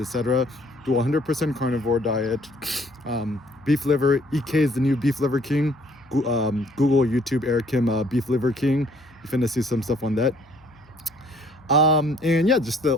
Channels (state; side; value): noise; left; hum, 29 dB below the sound